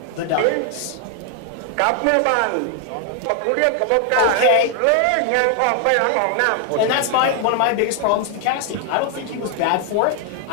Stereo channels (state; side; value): different; both; correlation 0.00